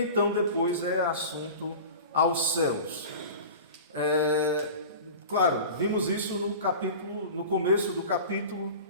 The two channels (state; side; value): inverted; both; correlation -0.36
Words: depois é assunto aos céus. Claro, vimos isso no começo do capítulo,